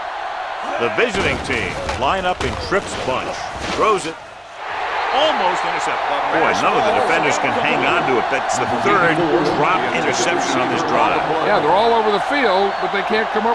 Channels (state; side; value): identical; both; correlation 1.00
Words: The visiting team line up in trips bunch. Throws it. Almost intercepted. Boy, none of the defenders can hang on to it. That's the third drop interception on this drive. Yeah, they're all over the field, but they can't come